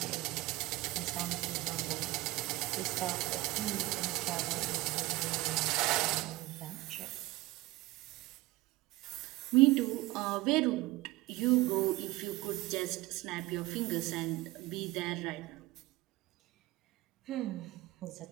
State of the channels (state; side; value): quieter; left; 19.5 dB